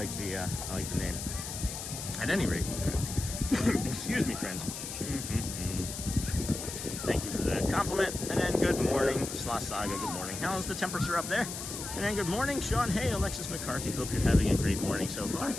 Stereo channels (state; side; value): noise; left; hiss, 7 dB below the sound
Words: the name. At any rate, excuse me, friends. Thank you for the compliment. And then good morning, Sloth Saga. Good morning. How's the temperature up there? And then good morning, Sean. Hey, Alexis McCarthy. Hope you're having a great morning so far.